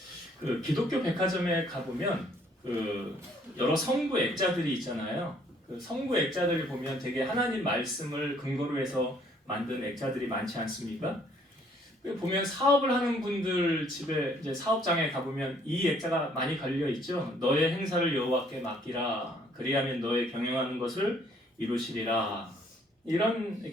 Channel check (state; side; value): normal; both; correlation 0.63